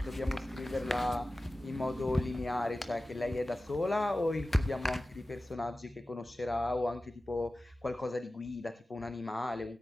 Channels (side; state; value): both; normal; correlation 0.96